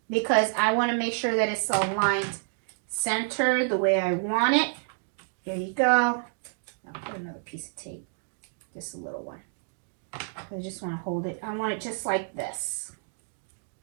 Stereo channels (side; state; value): left; silent; 59 dB below the other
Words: because I want to make sure that it's aligned center the way I want it. There you go. I'll put another piece of tape, just a little one. I just want to hold it. I want it just like this.